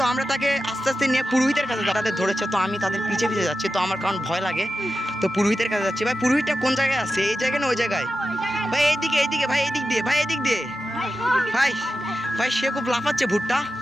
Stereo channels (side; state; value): both; normal; correlation 0.92